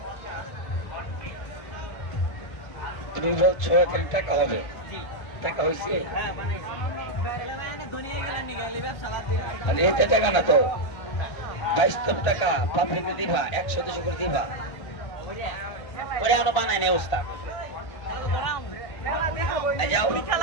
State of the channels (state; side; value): late; right; 1.5 ms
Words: তুমি বলছো এখানে টাকা হবে, জি টাকা হয়েছে? হ্যাঁ বানাইছি মানে এতে টাকা না তো 22 টাকা পাবলিকে দিবা 100-200 করে দিবা। করে আনো বানায় নেই ওস্তাদ। যাও